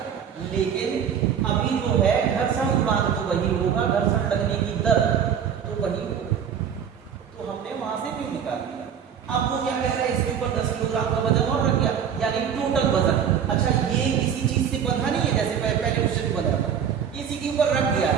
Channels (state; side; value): quieter; left; 8.1 dB